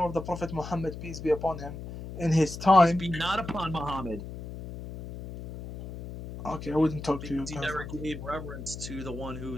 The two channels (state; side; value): noise; left; hum, 10 dB below the sound